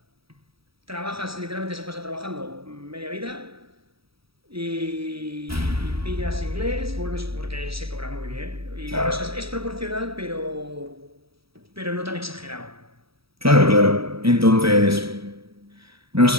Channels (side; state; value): left; late; 0.76 ms